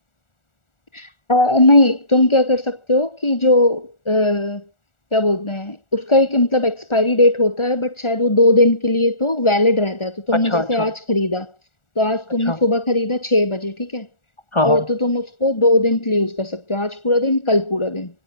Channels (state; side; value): late; right; 1.4 ms